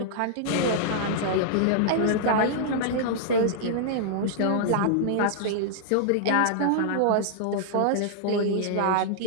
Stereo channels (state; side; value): different; both; correlation -0.01